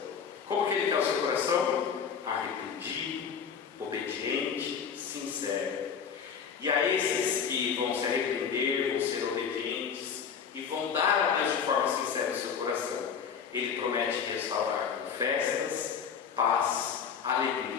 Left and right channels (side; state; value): right; quieter; 6.9 dB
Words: Como que Ele quer o seu coração? Arrependido, obediente, sincero. E a esses que vão se arrepender, vão ser obedientes e vão dar a Deus de forma sincera o seu coração, Ele promete restaurar com festas, paz,